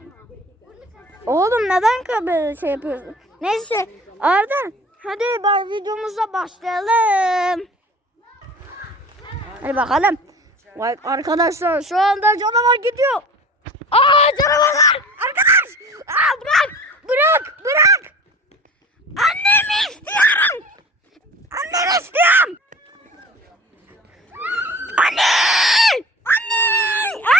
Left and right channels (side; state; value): both; normal; correlation 0.40